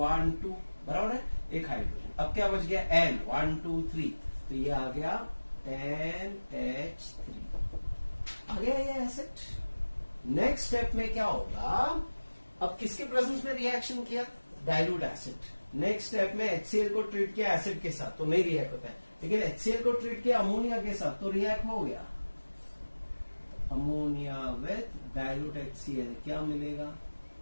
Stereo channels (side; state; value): both; inverted; correlation -1.00